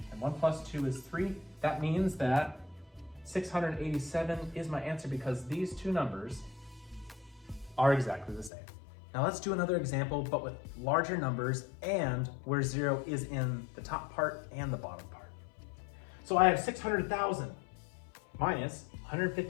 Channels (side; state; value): right; drops out; at 8.5 s